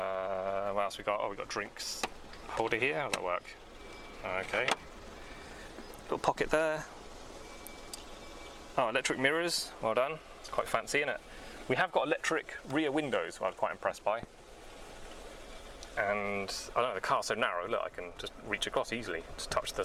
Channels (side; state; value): both; identical; correlation 1.00